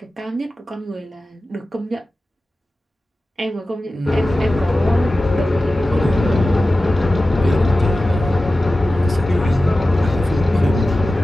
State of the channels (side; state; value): both; normal; correlation 0.95